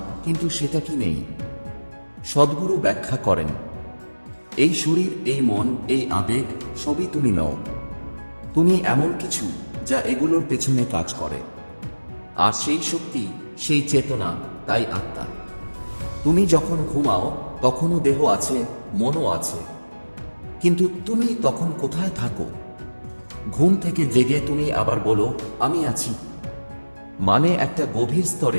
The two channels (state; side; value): inverted; both; correlation -1.00